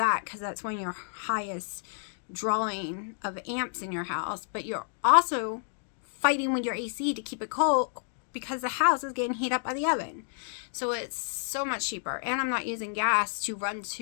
because that's one of your highest drawing of amps in your house, but you're also fighting with your AC to keep it cold, because the house is getting heated up by the oven. So it's so much cheaper. And I'm not using gas to run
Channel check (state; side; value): silent; right; digital silence